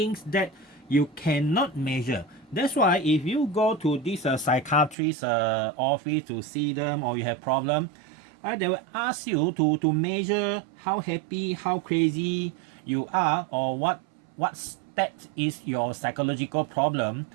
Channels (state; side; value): drops out; left; at 5.0 s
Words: that you cannot measure. That's why if you go to this psychiatrist office to see them, or you have problem, they will ask you to measure how happy, how crazy you are, or what state is your psychological problem.